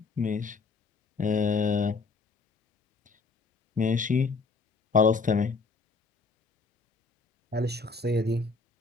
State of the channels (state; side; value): quieter; right; 4.2 dB